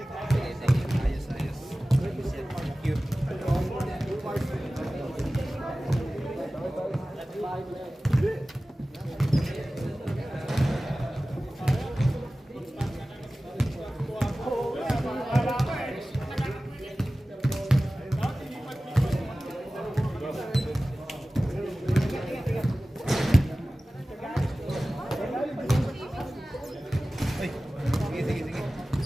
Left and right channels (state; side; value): normal; both; correlation 0.97